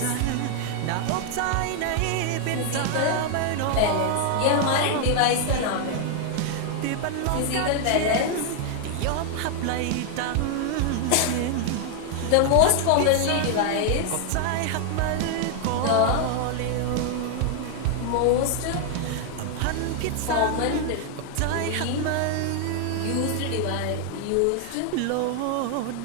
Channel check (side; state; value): both; different; correlation 0.00